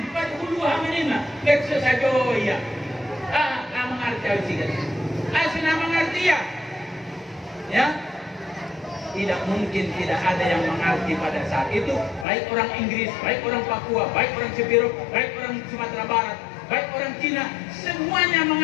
fadkhuluha menina. Tekso sajoya. Nggak mengerti juga. Asina mengerti ya. Ya. Tidak mungkin tidak ada yang mengerti pada saat itu. Baik orang Inggris, baik orang Papua, baik orang Sibirok, baik orang Sumatera Barat, baik orang Cina, semuanya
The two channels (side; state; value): right; drops out; at 12.2 s